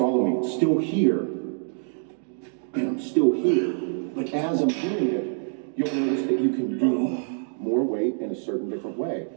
me? It's still here, and I'm still here. But as I'm doing it, you'll notice that you can do more weight in a certain different way.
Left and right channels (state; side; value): silent; left; digital silence